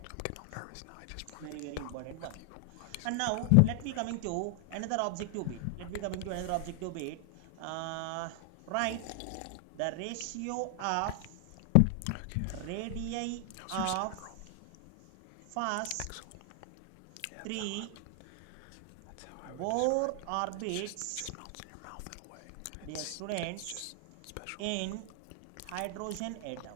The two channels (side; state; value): both; different; correlation 0.00